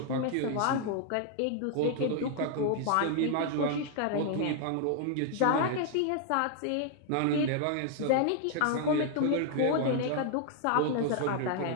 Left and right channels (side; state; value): both; different; correlation 0.00